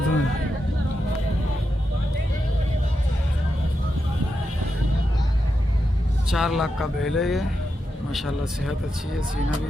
में। चार लाख का बैल है ये। माशाल्लाह सेहत अच्छी है, सीना भी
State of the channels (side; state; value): both; normal; correlation 0.87